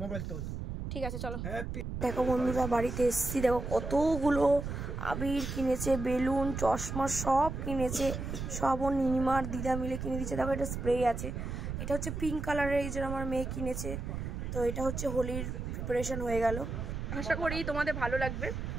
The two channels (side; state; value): right; noise; rumble, 5 dB below the sound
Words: মোবাইল তোল। ঠিক আছে চলো। দেখো বন্ধুরা, বাড়িতে এসেছি, দেখো কতগুলো আবির কিনেছে, বেলুন, চশমা সব কিনেছে। সব ওর নিনিমার দিদা মিলে কিনে দিচ্ছে। দেখো এটা স্প্রে আছে, এটা হচ্ছে পিঙ্ক কালারের, এই যে আমার মেয়ে কিনেছে। তো এটা হচ্ছে হোলির প্রিপারেশন হয়ে গেল। আশা করি তোমাদের ভালো লাগবে,